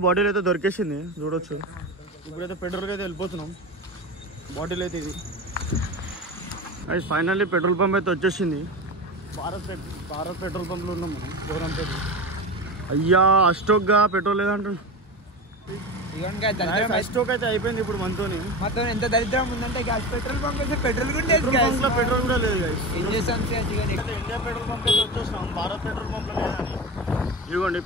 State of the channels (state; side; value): normal; both; correlation 0.25